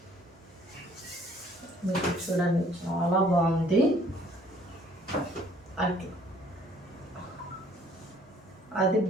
మీకు చూడండి, చాలా బాగుంది. అట్లా అది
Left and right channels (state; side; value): normal; both; correlation 0.59